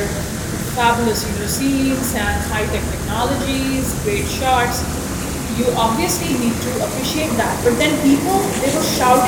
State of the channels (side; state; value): both; identical; correlation 1.00